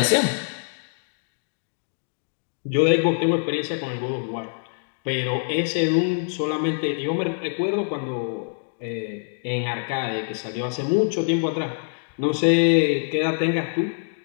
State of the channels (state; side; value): silent; right; digital silence